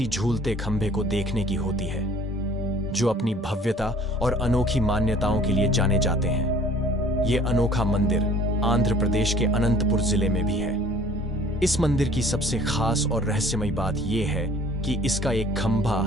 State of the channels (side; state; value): both; normal; correlation 0.51